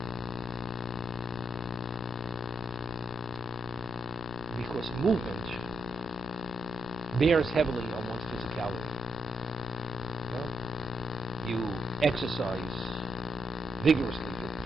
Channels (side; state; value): both; normal; correlation 0.81